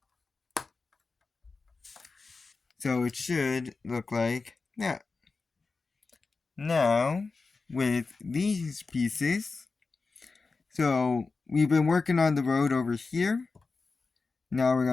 So it should look like that. Now, with these pieces, so we've been working on the road over here. Now we're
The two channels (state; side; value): quieter; right; 4.2 dB